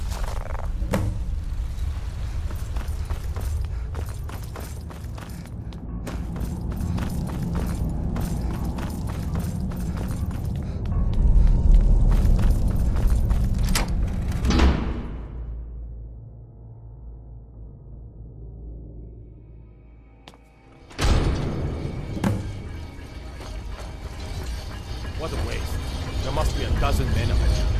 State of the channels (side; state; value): both; identical; correlation 1.00